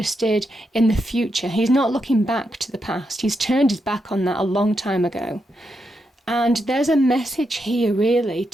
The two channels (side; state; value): both; normal; correlation 0.83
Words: in the future. He's not looking back to the past. He's turned his back on that a long time ago. And there's a message here really